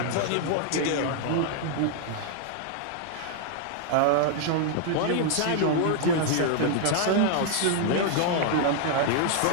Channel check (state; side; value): different; both; correlation 0.00